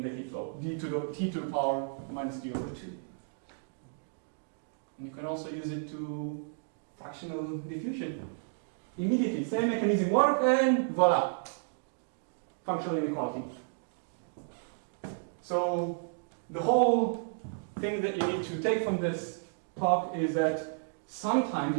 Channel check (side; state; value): left; silent; digital silence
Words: the heat flow, t to the power minus d over 2. And you can also use it to fractional diffusion. Immediately, same mechanism work, and voila, functional inequality. So the whole thing that you need to take from this talk is that sometimes